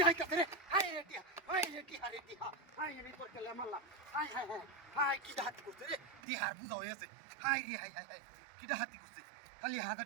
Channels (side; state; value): left; drops out; at 6.2 s